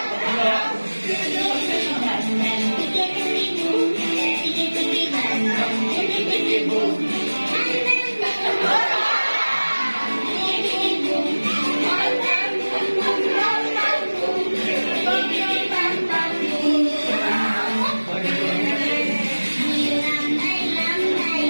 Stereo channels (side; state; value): both; inverted; correlation -1.00